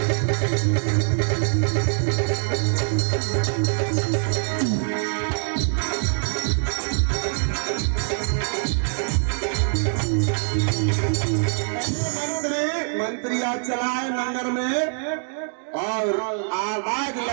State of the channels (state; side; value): silent; left; digital silence